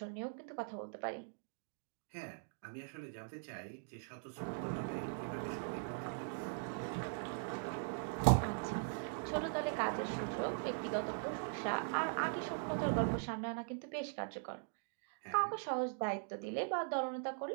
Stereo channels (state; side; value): silent; left; digital silence